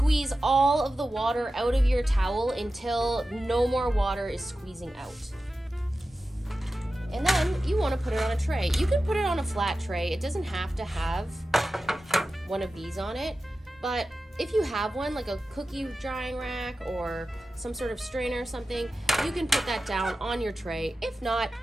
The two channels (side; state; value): both; normal; correlation 0.93